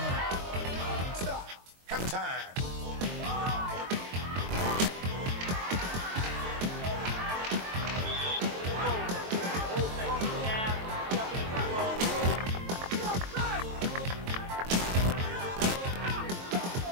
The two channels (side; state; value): left; late; 23 ms